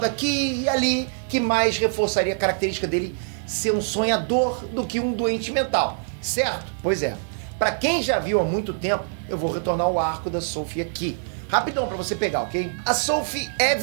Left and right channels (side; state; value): left; silent; 58 dB below the other